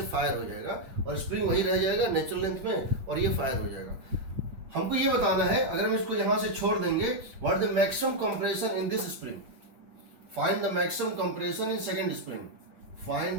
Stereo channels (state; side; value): late; left; 8.4 ms